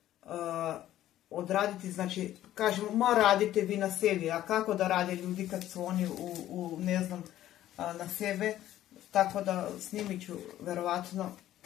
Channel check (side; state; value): right; quieter; 13.1 dB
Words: odraditi, znači, kažemo, ma radite vi na sebi, a kako da rade ljudi kad su oni ne znam, na sebe, tako da snimit ću verovatno